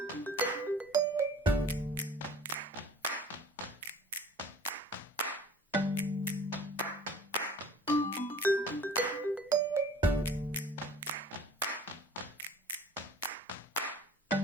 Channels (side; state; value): both; normal; correlation 0.46